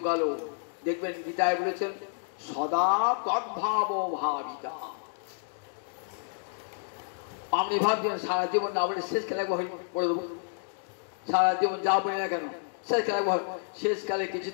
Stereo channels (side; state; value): right; silent; digital silence